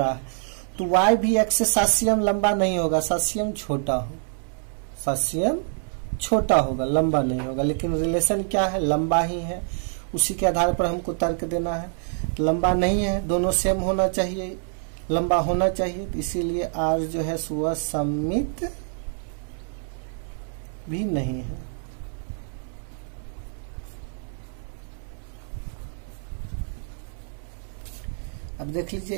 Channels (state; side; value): silent; left; 58 dB below the other